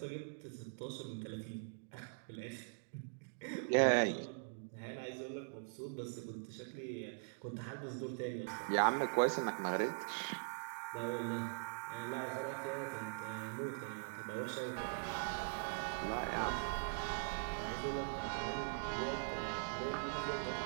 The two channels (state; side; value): silent; left; digital silence